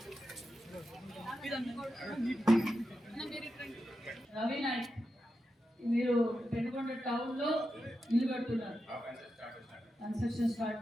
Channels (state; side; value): normal; both; correlation 0.89